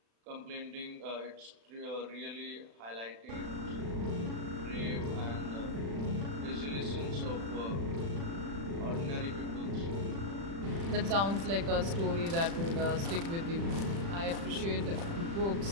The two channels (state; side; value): late; left; 36 ms